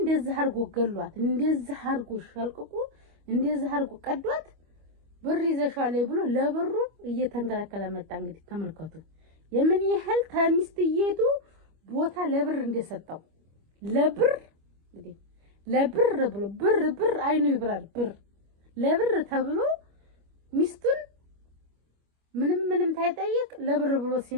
አርጎ ገሏት፣ እንደዚህ አርጎ ሸልቅቁ፣ እንደዚህ አርጎ ቀዷት። ብር ይዘሻል ብሎ ለብሩ እየተንከላከለ መጣ። እንግዲህ ተመልከቱ የምን ያህል ተሚስትየቱ ቦታ ለብር እንደሰጠው። ለብር እንግዲህ ለብር ብሎ ብር አይኑ ይብራል። ብር ለብር ተብሎ ሚስቱን ምንም ታይጠይቅ ለብር ብሎ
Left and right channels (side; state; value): left; late; 25 ms